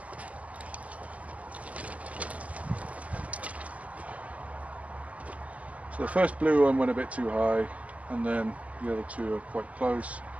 So the first blue one went a bit too high, and then the other two are quite close.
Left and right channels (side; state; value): left; late; 0.071 ms